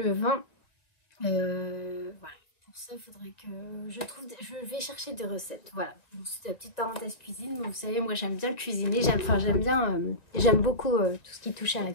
Voilà. Pour ça, il faudrait que je vais chercher des recettes. Voilà. C'est la petite parenthèse cuisine. Vous savez, moi, j'aime bien cuisiner. J'aime beaucoup tout ce qui touche à la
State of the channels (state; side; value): late; right; 1.9 ms